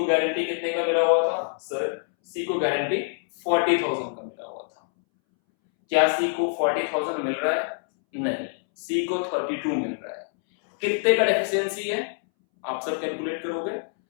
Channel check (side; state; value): right; silent; 61 dB below the other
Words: गारंटी कितने का मिला हुआ था, सर सी को गारंटी 40,000 का मिला हुआ था। क्या सी को 40,000 मिल रहा है, नहीं, सी को 32 मिल रहा है। कितने का डेफिशिएंसी है, आप सब कैलकुलेट करोगे,